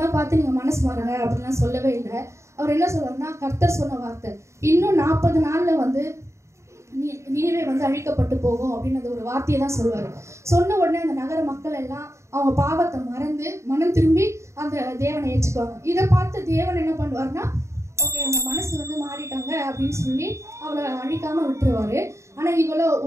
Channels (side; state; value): left; late; 0.14 ms